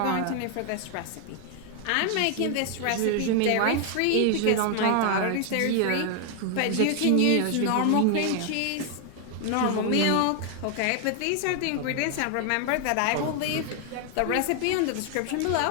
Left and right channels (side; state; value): both; different; correlation 0.00